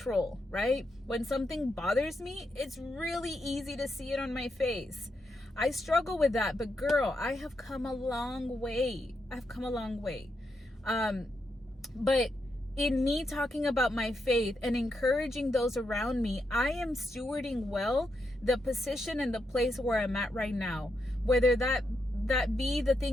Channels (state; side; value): normal; both; correlation 0.83